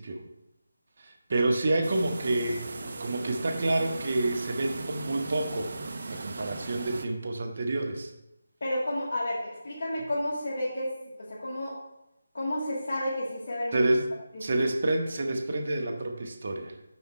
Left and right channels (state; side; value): inverted; both; correlation -0.91